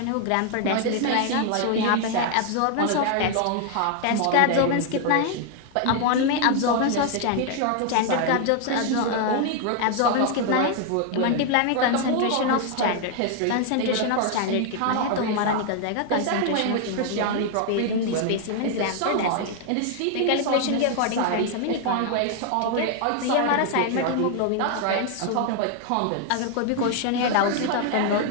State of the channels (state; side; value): different; both; correlation 0.00